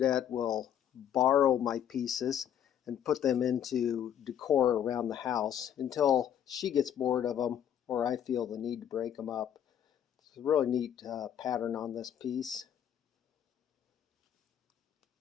will borrow my pieces and put them into decor around the house until she gets bored of them or I feel the need to break them up. It's a really neat pattern on this piece,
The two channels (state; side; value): quieter; right; 9.7 dB